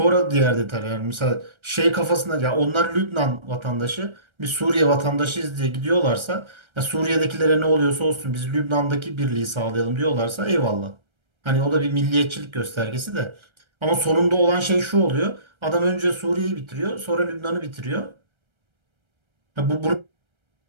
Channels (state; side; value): late; left; 1.3 ms